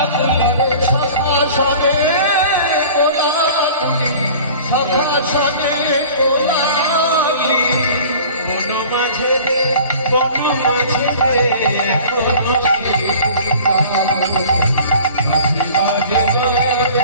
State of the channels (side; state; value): both; inverted; correlation -0.45